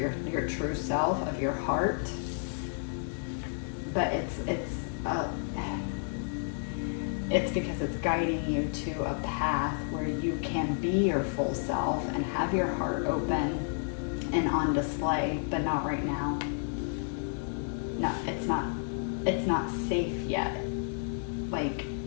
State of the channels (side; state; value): right; silent; digital silence